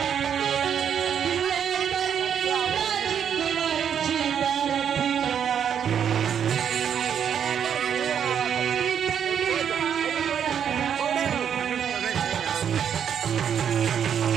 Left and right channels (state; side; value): quieter; left; 8.3 dB